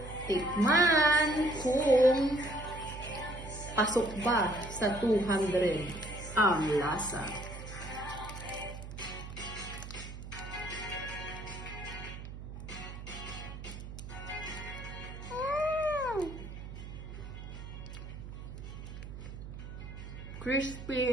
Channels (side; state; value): right; noise; hum, 10 dB below the sound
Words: tikman kung pasok ba sa 200 ang lasa.